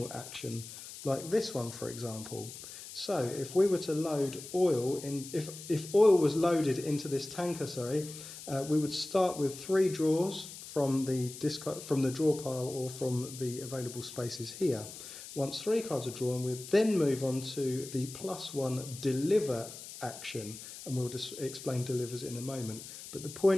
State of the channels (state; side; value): noise; left; hiss, 13 dB below the sound